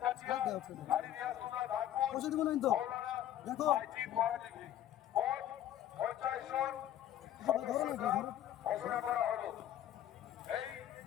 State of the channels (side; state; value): right; quieter; 11.8 dB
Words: পয়সা দিব না তো। দেখো ধরো না ধরো